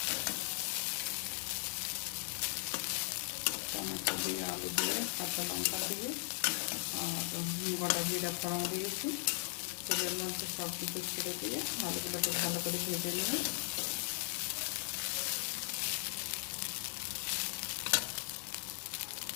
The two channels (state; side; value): silent; right; 52 dB below the other